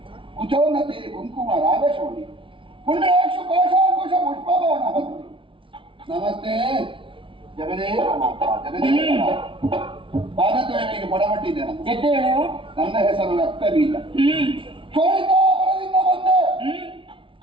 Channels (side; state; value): left; late; 0.25 ms